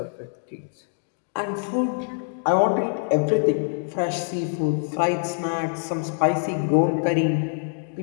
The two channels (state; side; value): silent; right; 62 dB below the other